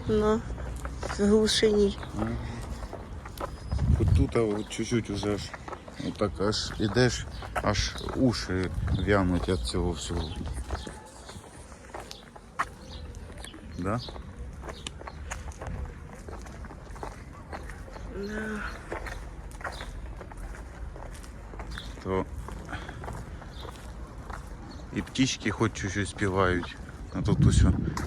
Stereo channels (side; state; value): both; identical; correlation 1.00